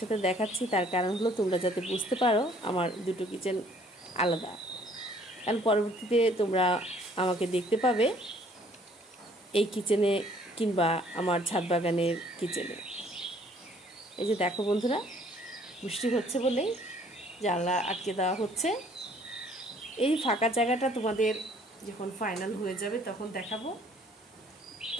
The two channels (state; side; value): normal; both; correlation 0.59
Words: দেখাচ্ছি, তার কারণ হলো তোমরা যাতে বুঝতে পারো আমার দুটো কিচেন আলাদা। কারণ পরবর্তীতে তোমরা আমাকে দেখতে পাবে এই কিচেনে কিংবা আমার ছাদ বাগানের কিচেনে। এই যে দেখো বন্ধুরা, বৃষ্টি হচ্ছে বলেই জানলা আটকে দেওয়া হচ্ছে। এই ফাঁকা জায়গাটা তোমাদের যখন ফাইনাল হয়ে যাবে তখন দেখাবো,